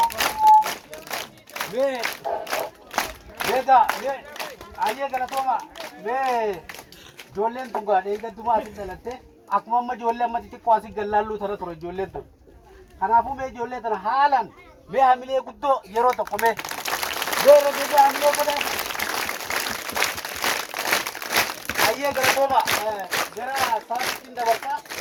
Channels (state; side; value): identical; both; correlation 1.00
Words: Ayyee galatooma ijoolleen tun gaadhee eeggattumaa asitti dhalatte akkuma amma ijoollee amma xixiqqoo asii gallaalluu tana ture ijoolleen tun. Kanaafuu mee ijoollee tana haalaan mee hamilee guddoo yeroo tokko mee regeessa hamilee godhan. Ayyee galatooma gara saasitiin dabarsaa.